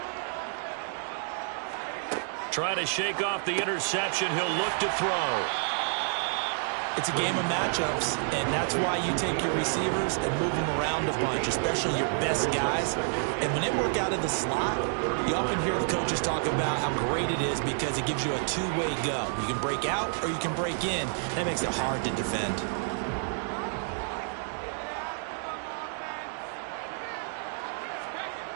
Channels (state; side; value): silent; left; 58 dB below the other